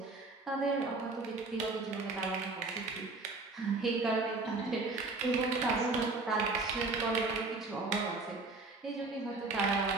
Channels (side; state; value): left; quieter; 3.5 dB